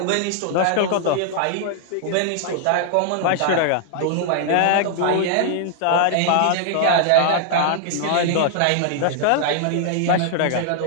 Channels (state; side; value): different; both; correlation 0.00